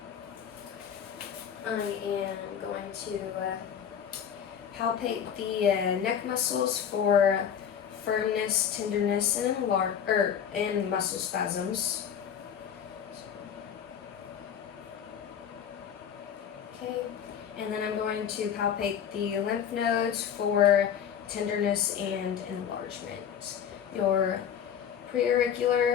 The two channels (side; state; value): right; quieter; 8.5 dB